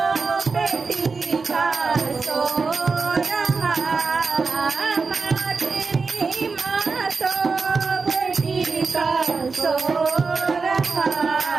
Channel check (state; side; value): quieter; left; 4.6 dB